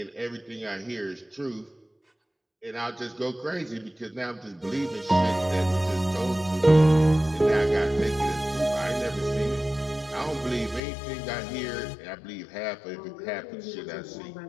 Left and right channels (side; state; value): right; drops out; at 10.8 s